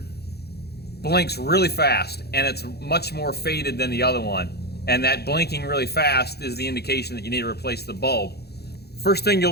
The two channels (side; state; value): right; late; 0.47 ms